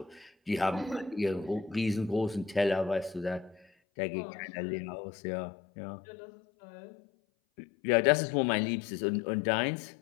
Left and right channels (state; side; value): drops out; right; at 3.7 s